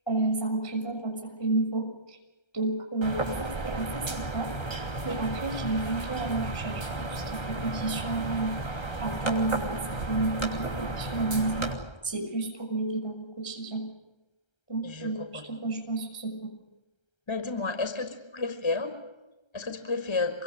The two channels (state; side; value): late; right; 1.3 ms